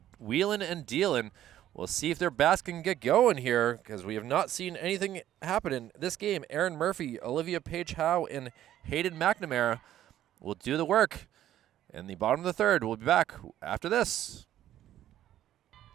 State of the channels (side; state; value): left; quieter; 12.3 dB